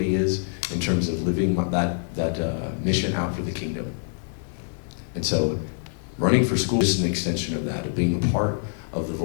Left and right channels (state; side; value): silent; right; digital silence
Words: is in terms of living that mission out for the kingdom. And so running for school is an extension of that, of being a part of the